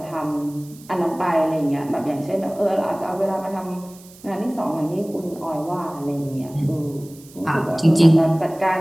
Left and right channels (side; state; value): right; noise; hiss, 23 dB below the sound